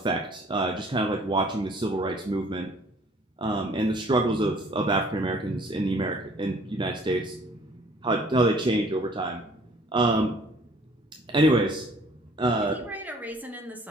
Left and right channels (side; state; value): both; normal; correlation 0.55